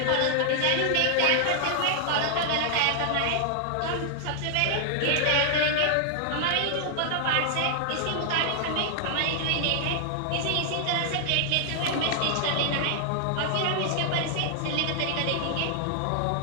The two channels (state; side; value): different; both; correlation 0.00